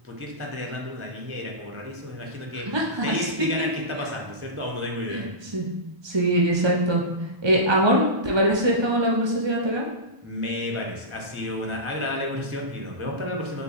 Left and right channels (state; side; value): late; left; 1.2 ms